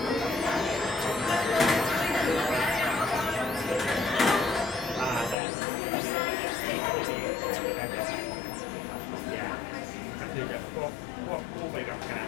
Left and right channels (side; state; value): right; drops out; at 5.4 s